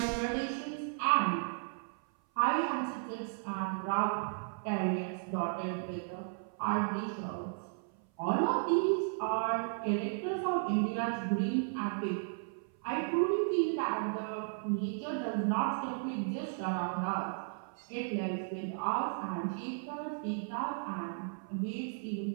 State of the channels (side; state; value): left; silent; 55 dB below the other